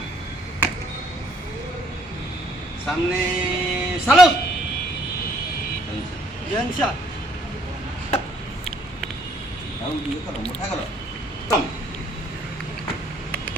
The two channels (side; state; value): both; normal; correlation 0.64